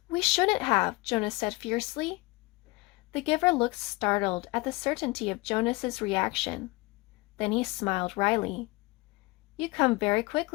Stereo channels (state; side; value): quieter; right; 23.5 dB